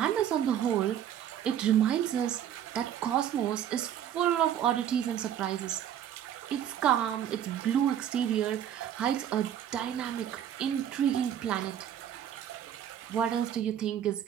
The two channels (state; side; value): quieter; left; 10.1 dB